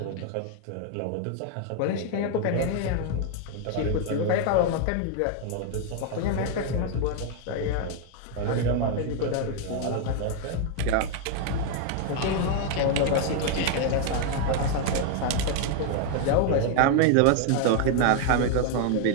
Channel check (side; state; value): both; different; correlation 0.00